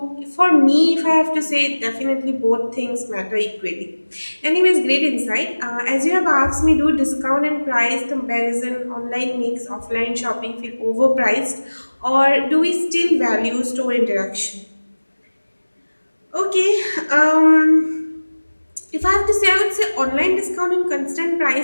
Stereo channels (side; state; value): both; inverted; correlation -1.00